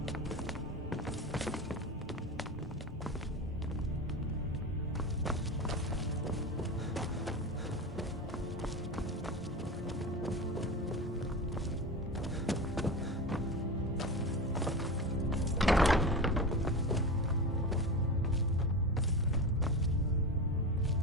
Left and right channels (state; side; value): normal; both; correlation 0.25